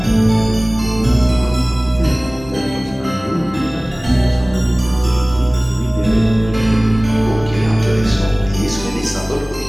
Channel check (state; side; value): normal; both; correlation 0.98